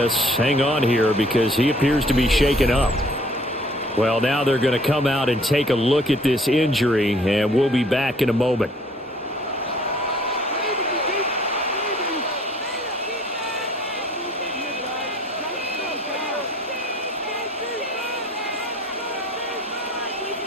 hang on here because he appears to be shaken up. Well, now they're going to come out and take a look at this injury, and we'll be back in a moment.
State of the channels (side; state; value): both; normal; correlation 0.56